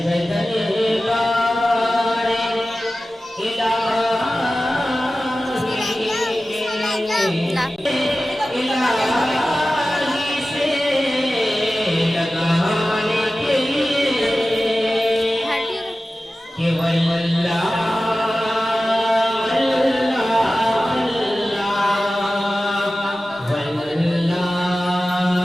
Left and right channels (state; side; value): normal; both; correlation 0.95